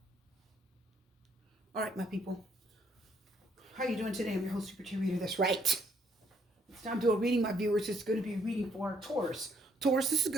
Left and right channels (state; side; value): normal; both; correlation 0.69